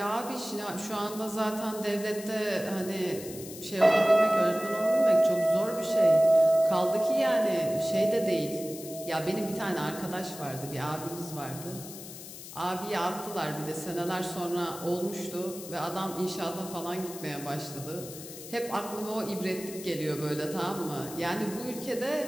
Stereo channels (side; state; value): left; noise; hiss, 13 dB below the sound